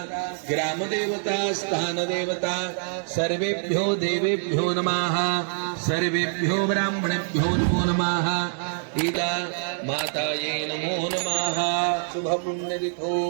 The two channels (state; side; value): silent; left; 62 dB below the other